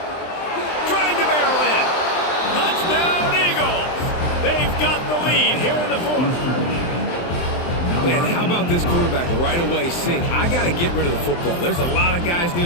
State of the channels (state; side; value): late; right; 23 ms